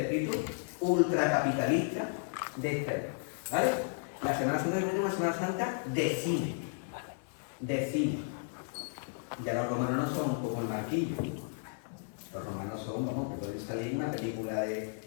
ultracapitalista de este. ¿Vale? La Semana Santa es una Semana Santa de cine. De cine. Ya los romanos no son como el Marquillo. Los romanos son, vamos, que pueden salir en una película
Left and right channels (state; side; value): silent; right; digital silence